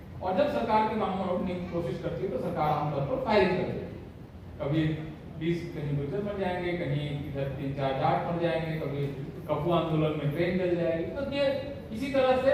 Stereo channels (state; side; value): identical; both; correlation 1.00